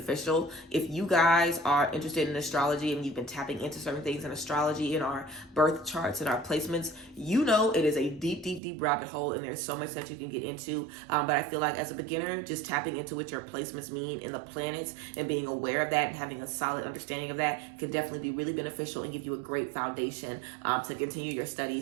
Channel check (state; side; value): drops out; left; at 8.6 s